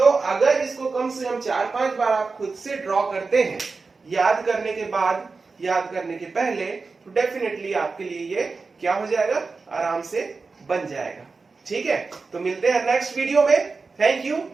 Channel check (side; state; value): left; quieter; 4.3 dB